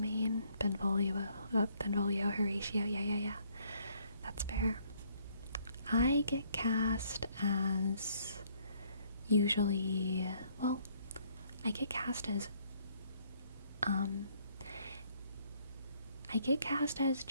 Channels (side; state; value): both; inverted; correlation -0.66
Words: Benvolio, Horatio, yeah. That's fair. I get cast as usually, well, I get cast as